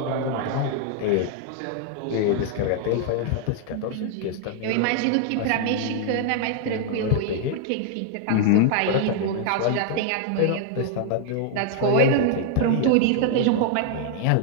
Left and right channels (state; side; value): different; both; correlation 0.00